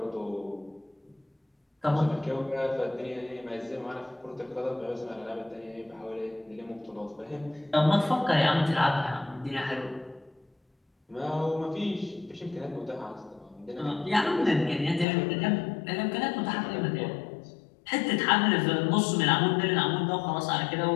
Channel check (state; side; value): drops out; right; at 15.1 s